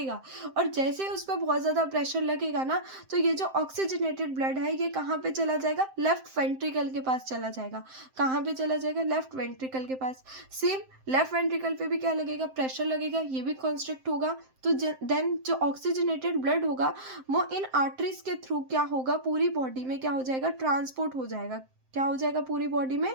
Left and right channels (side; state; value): left; late; 7.7 ms